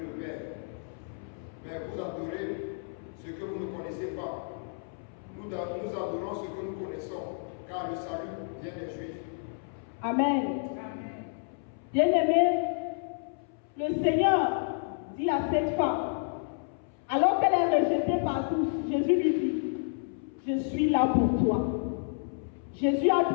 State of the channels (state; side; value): silent; right; 58 dB below the other